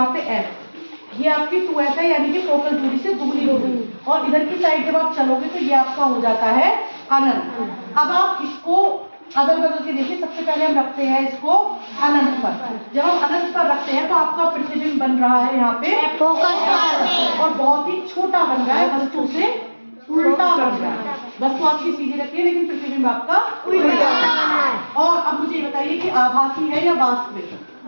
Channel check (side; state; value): both; inverted; correlation -1.00